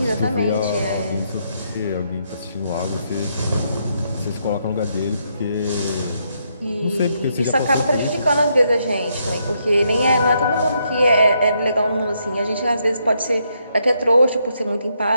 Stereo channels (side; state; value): both; inverted; correlation -0.77